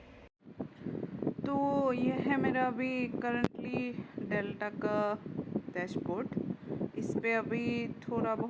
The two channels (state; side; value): identical; both; correlation 1.00